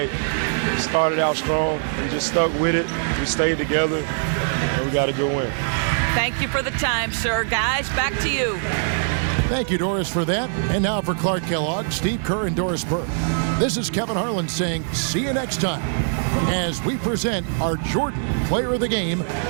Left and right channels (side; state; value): left; silent; digital silence